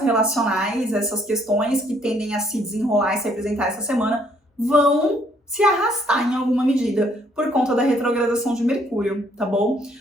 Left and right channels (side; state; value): both; normal; correlation 0.66